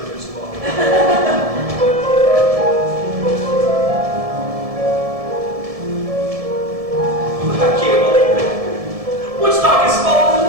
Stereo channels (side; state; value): left; late; 1.7 ms